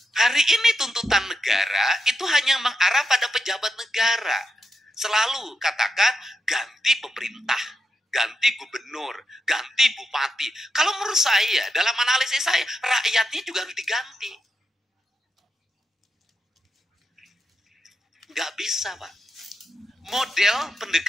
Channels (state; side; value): normal; both; correlation 0.85